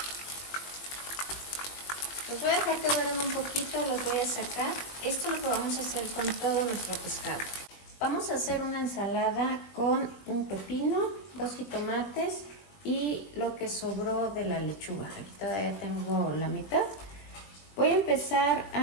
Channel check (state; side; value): late; right; 21 ms